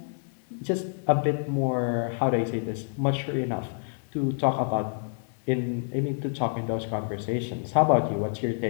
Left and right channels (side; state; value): right; silent; digital silence